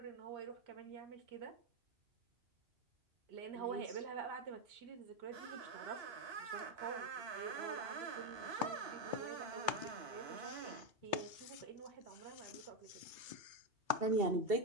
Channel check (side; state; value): left; late; 2.3 ms